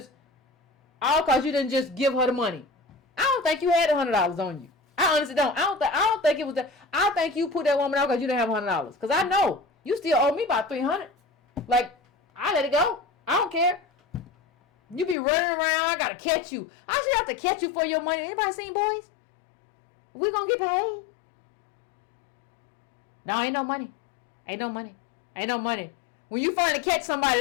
just give her the money. I don't think you had $100 on you. I honestly don't. I don't think it was that. I think you put that woman out because you didn't have $100. Because I know. You still owe me about $300. Like, I let it go. I don't care. You be running around. I gotta catch you. I should have to catch you for your money. Anybody seen Boys? We gonna get paid? No, ain't no money. Ain't no money. When you finally catch somebody,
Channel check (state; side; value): drops out; right; at 15.2 s